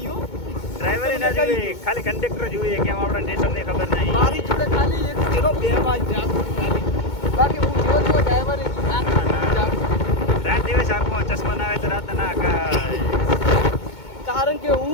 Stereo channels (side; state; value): right; late; 2.2 ms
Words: હો. ડ્રાઈવરે ના જોઈએ ખાલી કંડક્ટર જોઈએ કેમ આપણા સ્ટેશન ની ખબર નહીં મારી જોડે ખાલી એક જેનો બે વાર જાગું ખાલી બાકી હું જ્યો તો ડ્રાઈવરે નહીં જાગું. રાત દિવસ આંખો ચશ્મા ના આવે તો રાત ના આકાશ કારણ કે